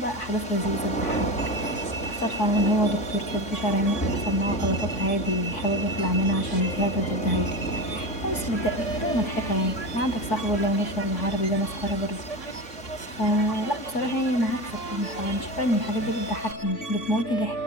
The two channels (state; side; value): late; right; 3.5 ms